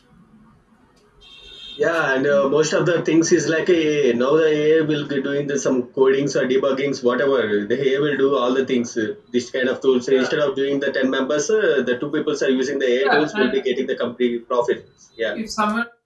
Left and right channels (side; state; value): both; identical; correlation 1.00